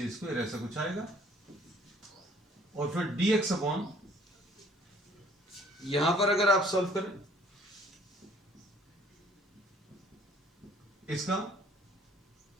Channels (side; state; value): both; normal; correlation 0.58